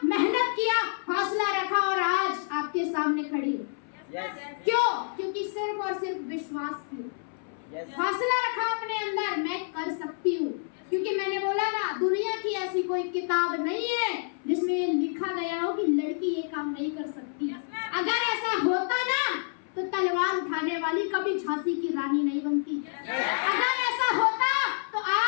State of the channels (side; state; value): right; silent; 59 dB below the other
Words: मेहनत किया, हौसला रखा और आज आपके सामने खड़ी है। क्यों? क्योंकि सिर्फ और सिर्फ विश्वास किया, हौसला रखा अपने अंदर, मैं कर सकती हूँ। क्योंकि मैंने बोला ना, दुनिया की ऐसी कोई किताब नहीं है जिसमें ये लिखा गया हो कि लड़की ये काम नहीं कर सकती। अगर ऐसा होता ना तो तलवार उठाने वाली कभी झांसी की रानी नहीं बनती। अगर ऐसा होता तो